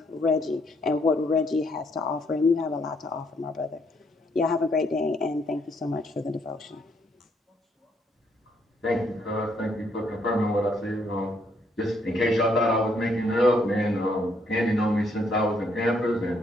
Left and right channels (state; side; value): normal; both; correlation 0.71